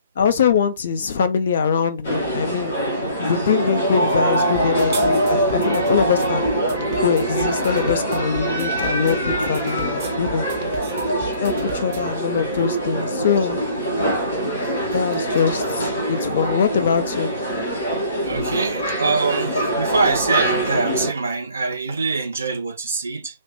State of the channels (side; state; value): both; inverted; correlation -0.55